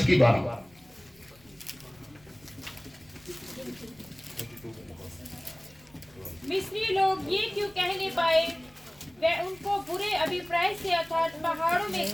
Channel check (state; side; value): noise; left; rumble, 28 dB below the sound